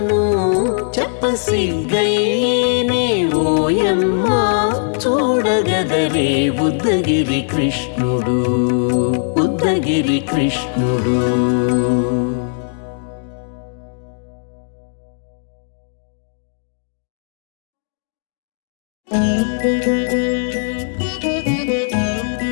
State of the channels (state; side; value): silent; right; digital silence